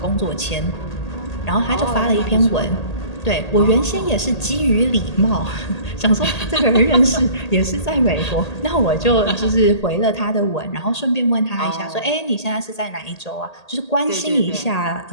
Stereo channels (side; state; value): right; late; 1.8 ms